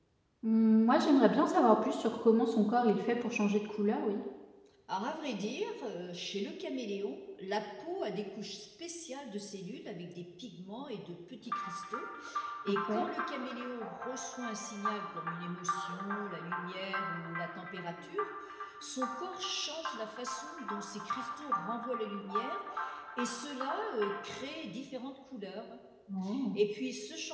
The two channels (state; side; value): identical; both; correlation 1.00